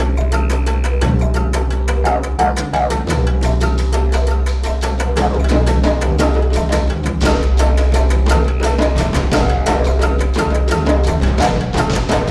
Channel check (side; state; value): both; identical; correlation 1.00